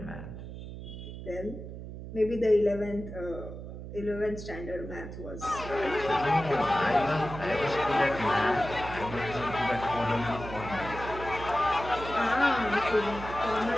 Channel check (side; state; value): right; noise; hum, 10 dB below the sound